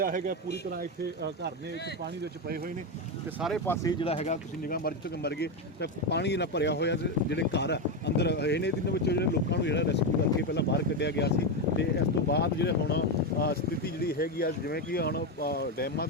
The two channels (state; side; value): normal; both; correlation 0.10